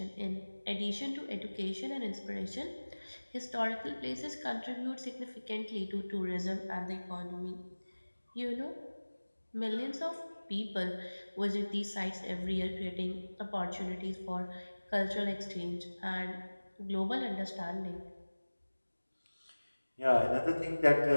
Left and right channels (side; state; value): both; inverted; correlation -1.00